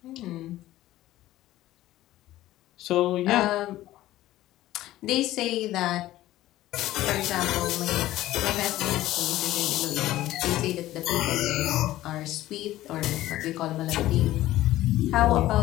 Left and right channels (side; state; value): right; quieter; 15.3 dB